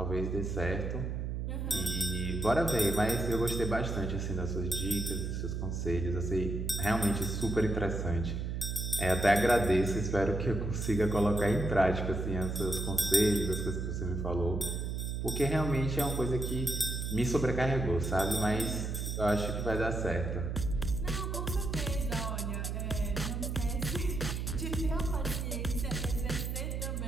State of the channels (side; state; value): right; noise; hum, 2 dB below the sound